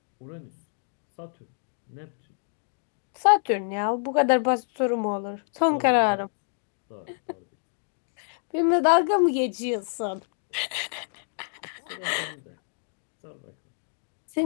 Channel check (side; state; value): right; silent; digital silence